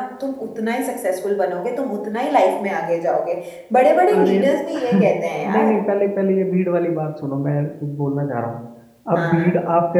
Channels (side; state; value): both; identical; correlation 1.00